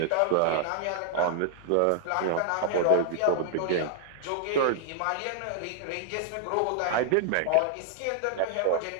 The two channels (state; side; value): different; both; correlation 0.00